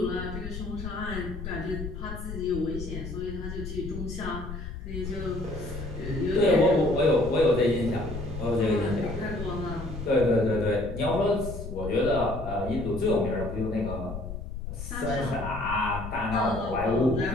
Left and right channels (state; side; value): noise; left; rumble, 8 dB below the sound